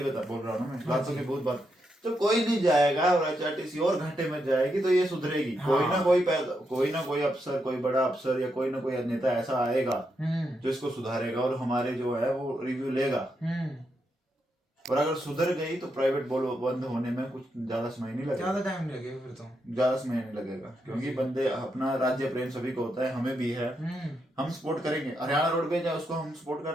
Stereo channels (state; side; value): normal; both; correlation 0.82